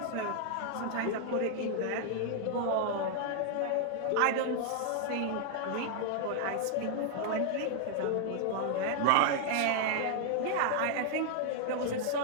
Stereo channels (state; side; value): different; both; correlation 0.00